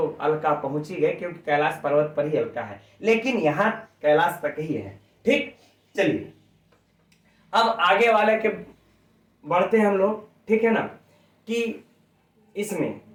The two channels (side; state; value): both; identical; correlation 1.00